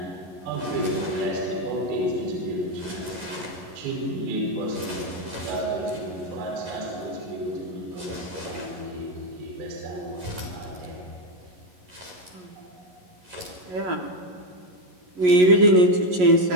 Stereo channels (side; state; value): left; late; 11 ms